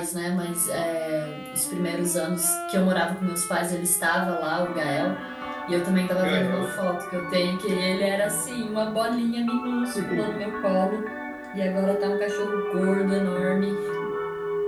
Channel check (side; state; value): both; identical; correlation 1.00